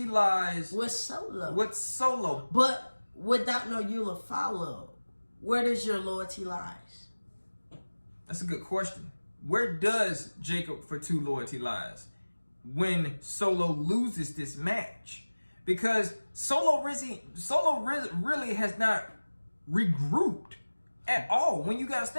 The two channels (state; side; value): inverted; both; correlation -1.00